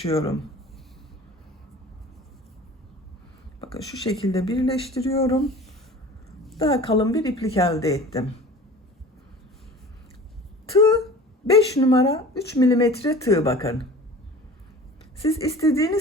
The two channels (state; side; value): normal; both; correlation 0.41